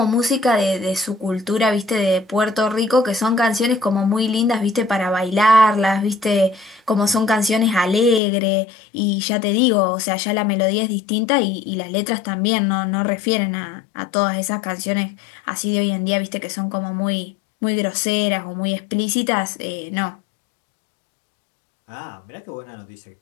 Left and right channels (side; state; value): right; drops out; at 8.2 s